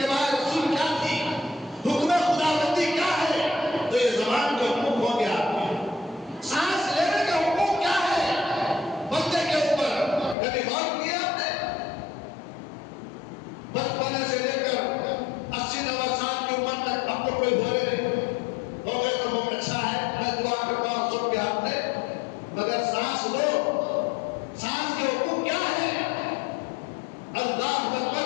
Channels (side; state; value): right; drops out; at 10.4 s